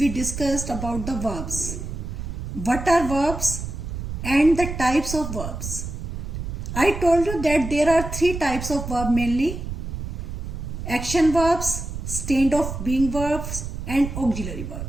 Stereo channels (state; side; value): noise; right; rumble, 6 dB below the sound